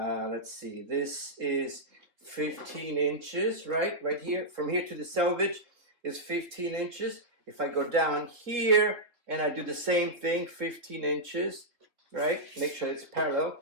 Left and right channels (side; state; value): left; late; 3.6 ms